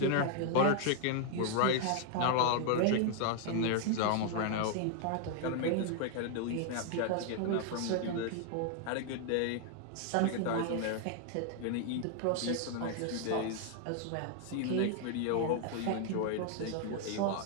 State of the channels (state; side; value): different; both; correlation 0.00